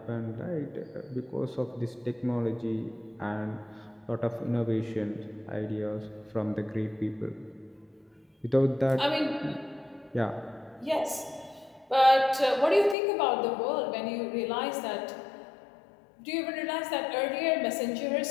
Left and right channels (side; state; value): right; drops out; at 13.0 s